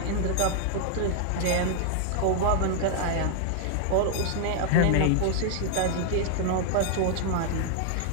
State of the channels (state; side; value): different; both; correlation -0.01